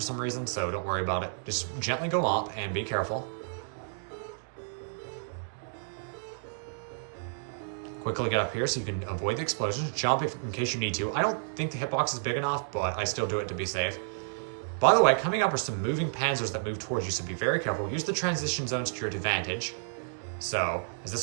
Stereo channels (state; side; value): silent; left; digital silence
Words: some reason, so don't worry about it. Just gently go up and be careful. Quickly get up here so you can avoid the explosions. Jump in case you need to. I don't think the hitbox is big enough, but I still do it to be safe. By the way, coming up are some moving panzers that move towards you, so be very careful. Use the transition zones to your advantage. So, as